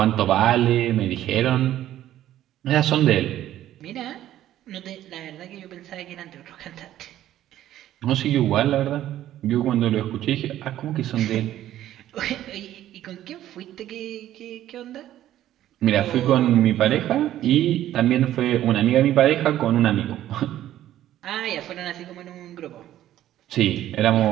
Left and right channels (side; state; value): left; quieter; 12.8 dB